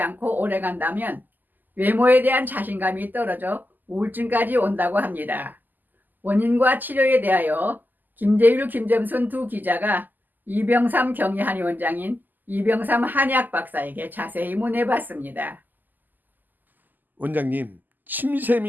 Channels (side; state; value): left; late; 0.086 ms